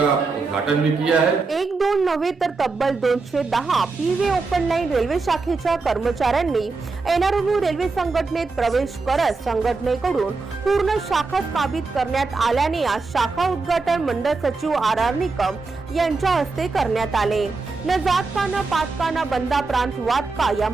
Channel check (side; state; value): left; quieter; 4.0 dB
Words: उद्घाटन भी किया है। एक दोन नव्हे तर तब्बल 210 पीवे ओपन लाईन रेल्वे शाखेच्या कर्मचाऱ्यांनी एनआरएमयू रेल्वे संघटनेत प्रवेश करत संघटनेकडून पूर्ण शाखा स्थापित करण्यात आल्याने आज शाखा उद्घाटन मंडळ सचिव आर आर निकम यांच्या हस्ते करण्यात आले। न जात का न पात का न बंदा प्रांत वाद का या